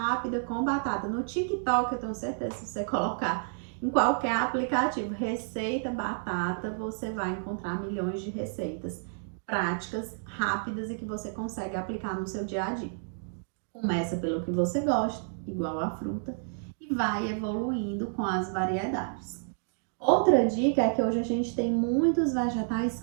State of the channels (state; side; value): silent; left; digital silence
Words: com batata. No TikTok, eu tenho certeza, se você colocar em qualquer aplicativo, receita batata, você vai encontrar milhões de receitas práticas, rápidas e que você consegue aplicar no seu dia a dia. Começa pelo que você gosta, igual a fruta, e vai evoluindo com as variedades. Outra dica é que hoje a gente tem muitos vegetais